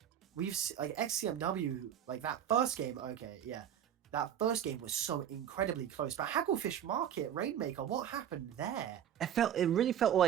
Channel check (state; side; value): quieter; left; 9.9 dB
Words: like XCMW, like that first game, okay, yeah. That first game was so incredibly close. But Hagglefish Market, Rainmaker, what happened there? It really felt